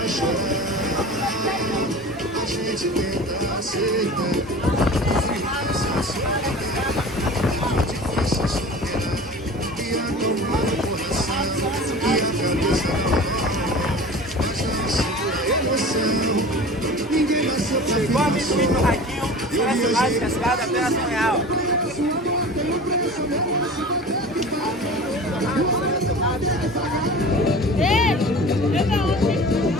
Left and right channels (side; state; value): both; normal; correlation 0.38